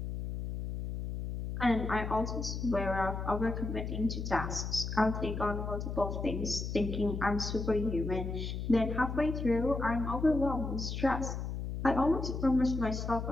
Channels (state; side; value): noise; left; hum, 4 dB below the sound